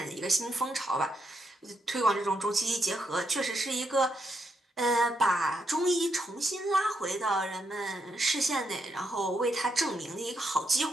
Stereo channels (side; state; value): both; normal; correlation 0.80